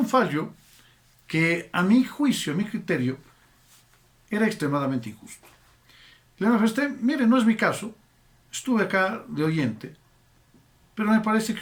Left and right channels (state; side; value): identical; both; correlation 1.00